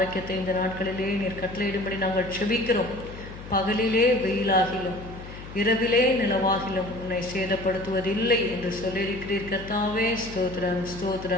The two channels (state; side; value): noise; left; hum, 14 dB below the sound